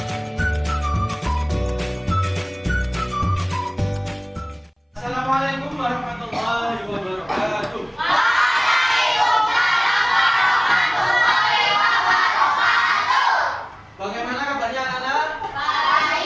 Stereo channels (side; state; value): both; identical; correlation 1.00